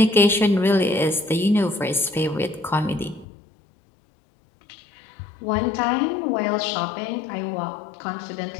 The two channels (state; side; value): drops out; right; at 3.2 s